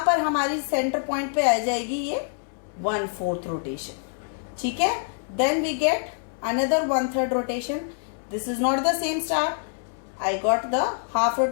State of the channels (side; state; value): right; silent; 61 dB below the other